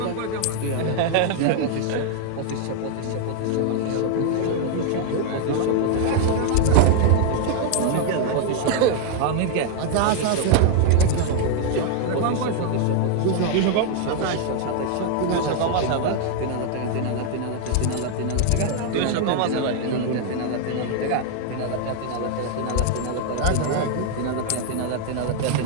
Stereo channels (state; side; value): different; both; correlation 0.00